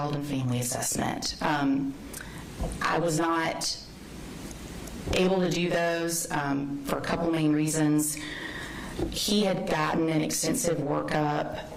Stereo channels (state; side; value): identical; both; correlation 1.00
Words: and family assessment. I was not able to do those for a couple main reasons. He had gotten an extensive workup